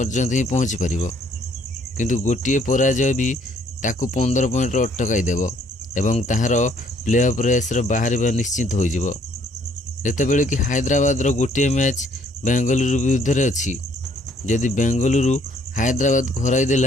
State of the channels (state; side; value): normal; both; correlation 0.64